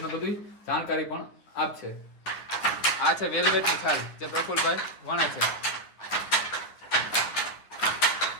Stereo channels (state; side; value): late; right; 10 ms